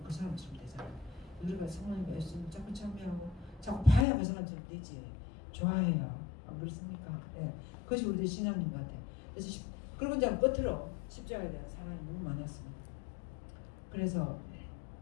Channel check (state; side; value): drops out; right; at 4.0 s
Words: 그 사람처럼 되잖아요. 우리가 성모님과 예수님을 자꾸 참여하고 자꾸 봐야 그 사람처럼 되지. 좋아해요. 안 그렇습니까? 네. 그것이 우리들 신앙인 것 같아요. 그래서 그리고 이제 끝으로 십자가에 대한 사랑이 너무 많았습니다. 그래서